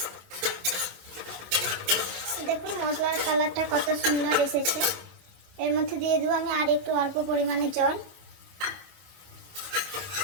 দেখুন মশলার কালারটা কত সুন্দর এসেছে। এর মধ্যে দিয়ে দেবো আমি আর একটু অল্প পরিমাণে জল।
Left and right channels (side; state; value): left; late; 25 ms